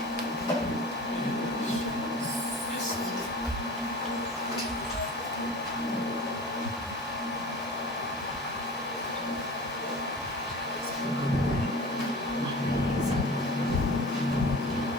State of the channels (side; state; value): both; normal; correlation 0.37